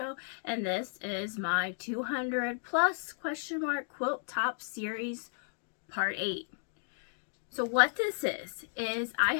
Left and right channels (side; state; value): right; silent; digital silence